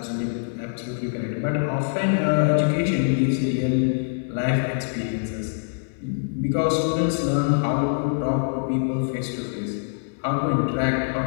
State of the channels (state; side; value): silent; right; digital silence